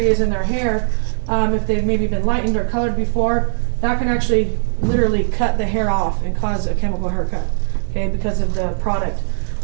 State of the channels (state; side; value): silent; left; 67 dB below the other